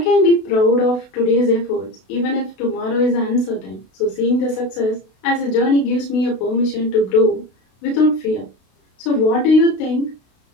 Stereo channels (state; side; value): late; right; 32 ms